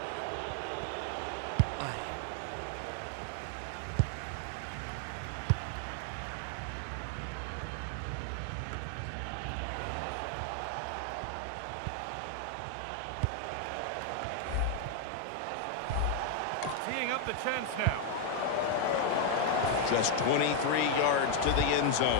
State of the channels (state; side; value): different; both; correlation 0.01